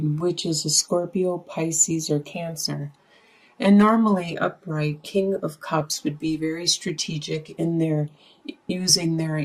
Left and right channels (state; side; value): identical; both; correlation 1.00